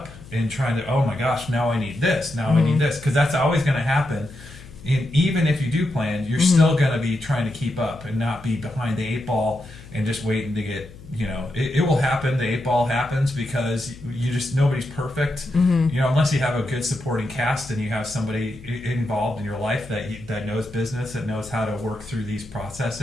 and trying to, oh my gosh, now I need this, I need this, because that's always going to happen. And even if you do plan, you're still going to be trying to keep up and not be behind the 8 ball and just waiting to get, it will happen. The 8 ball happens because nobody's perfect, unless you have a good supporting cast and you have somebody involved in your life that knows business, that knows how to work through these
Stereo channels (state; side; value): noise; left; hum, 18 dB below the sound